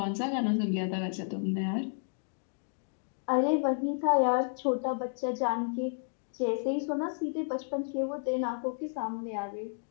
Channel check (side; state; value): right; silent; digital silence